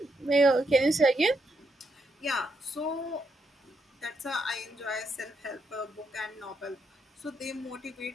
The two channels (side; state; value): both; normal; correlation 0.79